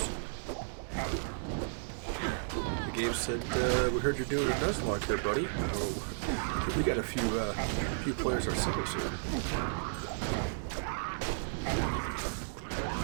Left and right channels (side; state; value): left; silent; digital silence